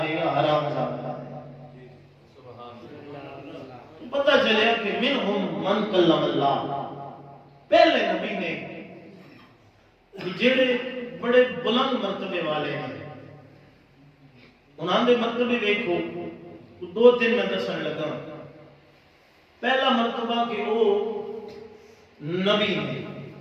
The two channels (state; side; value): identical; both; correlation 1.00